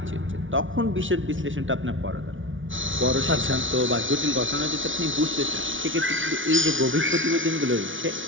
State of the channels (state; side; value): late; left; 0.57 ms